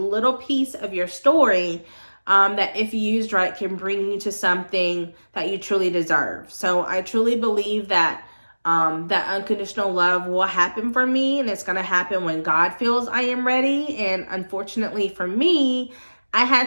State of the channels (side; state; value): both; inverted; correlation -1.00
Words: piece of your story that if used right can bring you to something that you truly deserve. So I truly believe that that unconditional love will happen for me, and it's going to happen when God feels I am ready. And unfortunately for me, I